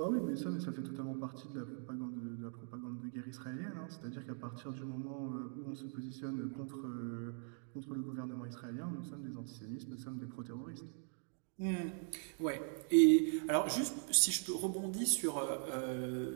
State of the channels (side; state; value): left; silent; 51 dB below the other